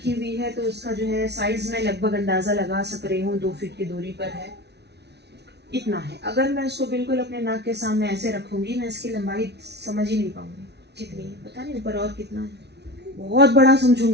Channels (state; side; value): late; left; 0.49 ms